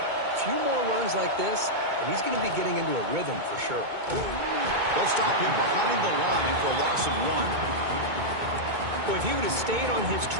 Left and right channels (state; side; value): late; left; 2.2 ms